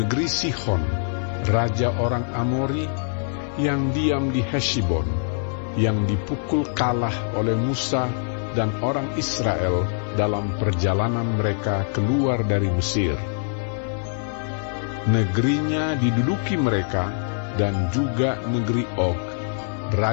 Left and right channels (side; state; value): right; silent; 58 dB below the other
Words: Sihon, raja orang Amori, yang diam di Heshbon, yang dipukul kalah oleh Musa dan orang Israel dalam perjalanan mereka keluar dari Mesir. Negerinya diduduki mereka, dan juga negeri Og,